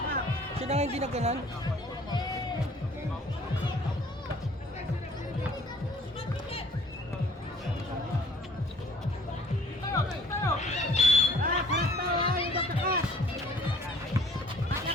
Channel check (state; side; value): normal; both; correlation 0.55